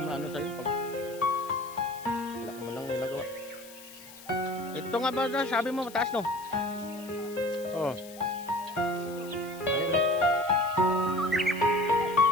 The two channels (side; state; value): left; noise; hiss, 18 dB below the sound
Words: ano sa'yo pag wala ka man lang ginagawa. Ito nga ba na sabi mo mataas no? Oo.